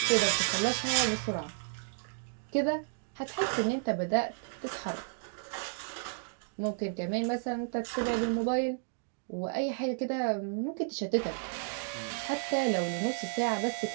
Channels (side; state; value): left; silent; digital silence